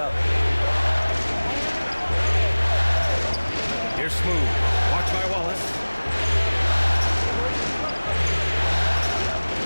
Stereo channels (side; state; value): both; inverted; correlation -1.00